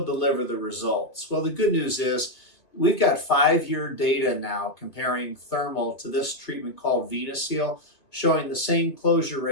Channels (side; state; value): right; late; 2.4 ms